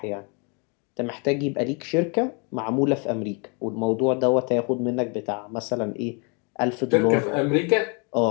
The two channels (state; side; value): quieter; right; 34.8 dB